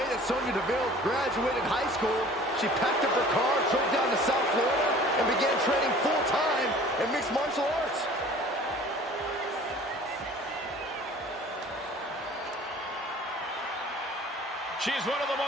that Sonya Deville graduated high school, she packed up her car, drove down to South Florida, and began training full-time in mixed martial arts. She's one of the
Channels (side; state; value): both; normal; correlation 0.47